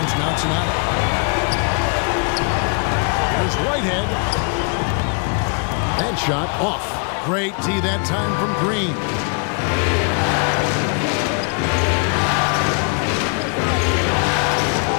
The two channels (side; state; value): right; quieter; 37.9 dB